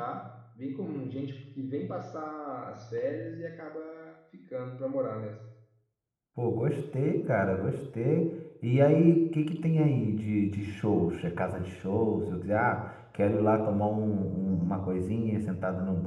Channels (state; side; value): identical; both; correlation 1.00